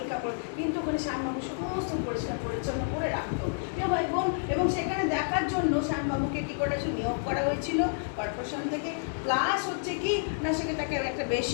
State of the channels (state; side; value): silent; right; digital silence